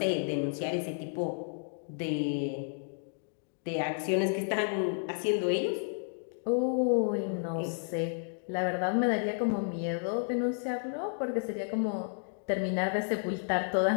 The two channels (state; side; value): silent; right; digital silence